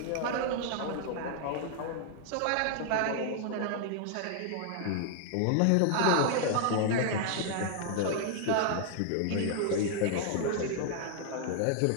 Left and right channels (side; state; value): both; different; correlation 0.00